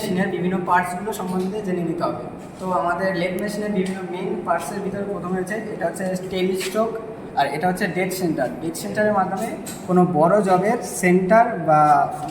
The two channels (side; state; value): both; identical; correlation 1.00